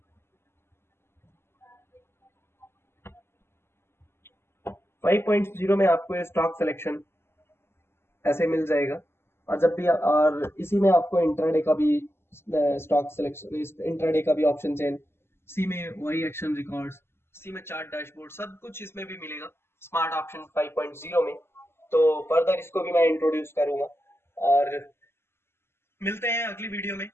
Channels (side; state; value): right; late; 0.12 ms